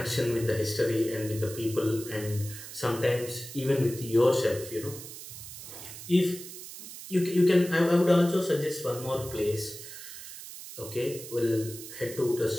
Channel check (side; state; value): right; noise; hiss, 12 dB below the sound